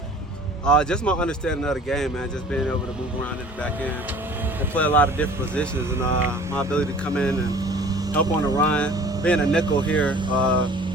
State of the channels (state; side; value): normal; both; correlation 0.47